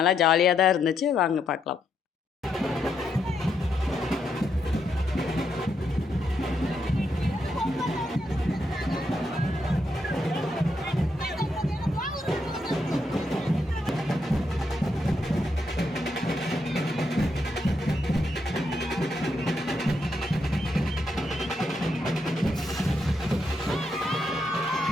ஜாலியாக தான் இருந்துச்சு. வாங்க பார்க்கலாம்.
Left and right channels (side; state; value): both; normal; correlation 0.79